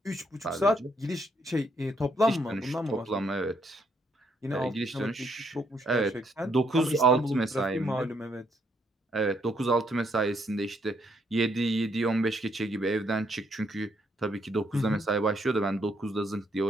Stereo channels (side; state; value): both; normal; correlation 0.72